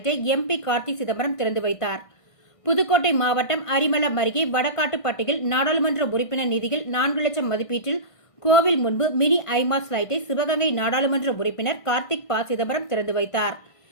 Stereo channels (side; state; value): right; late; 1.5 ms